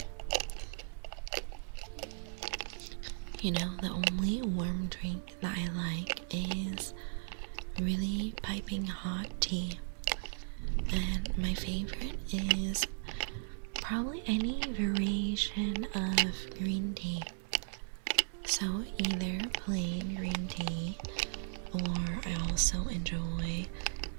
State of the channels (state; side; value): silent; left; 54 dB below the other